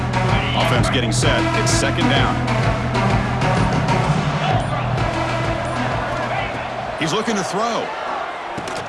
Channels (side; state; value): both; identical; correlation 1.00